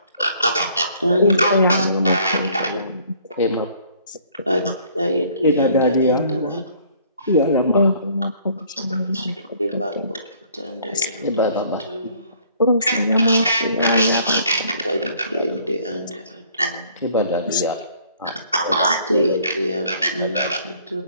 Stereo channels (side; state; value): both; inverted; correlation -0.59